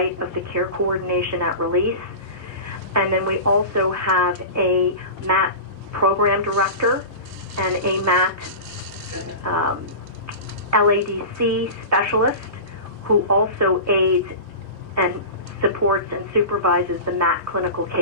of the care coordination at release. And then we also have a MAT program director and a MAT LADC specialist who also aids and supports and supervises the MAT clinical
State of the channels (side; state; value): right; late; 7.1 ms